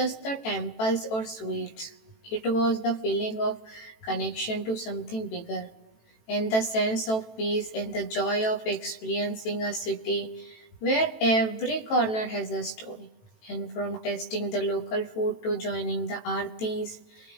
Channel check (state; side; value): late; right; 18 ms